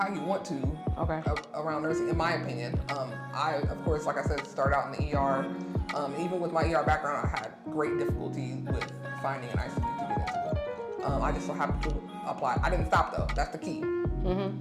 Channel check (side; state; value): both; identical; correlation 1.00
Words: you want to around nursing, in my opinion. I, of course, like I said, started out in the ER. Even with my ER background, I had great difficulty with finding an ICU to get into. I just so happened to apply. I didn't stop though. That's the key.